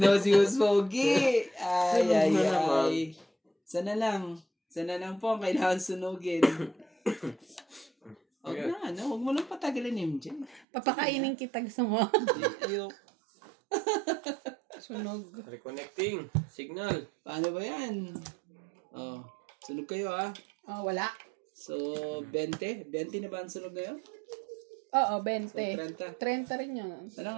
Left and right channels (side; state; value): left; drops out; at 10.7 s